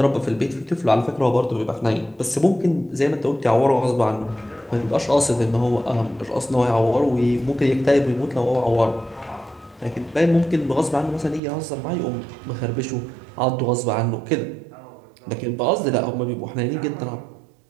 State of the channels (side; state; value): left; drops out; at 11.4 s